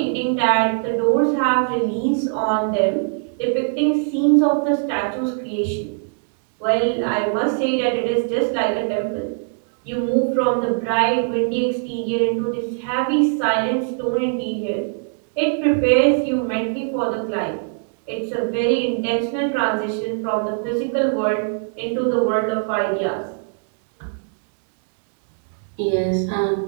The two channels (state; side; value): silent; left; digital silence